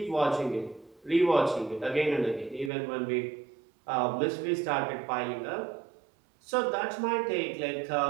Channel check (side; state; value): left; drops out; at 2.7 s